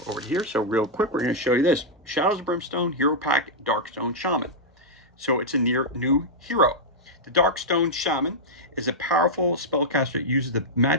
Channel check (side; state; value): both; normal; correlation -0.06